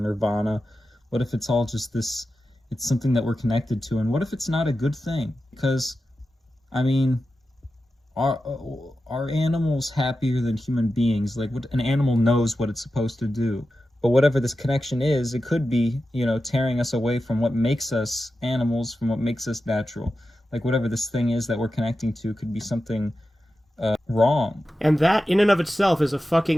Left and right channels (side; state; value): both; normal; correlation 0.92